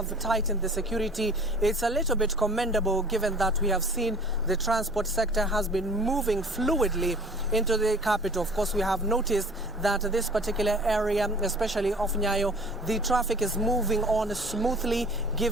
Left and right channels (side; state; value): both; normal; correlation 0.47